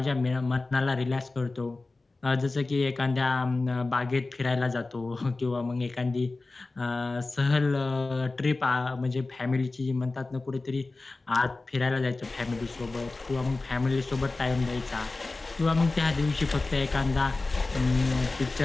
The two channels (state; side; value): quieter; right; 3.4 dB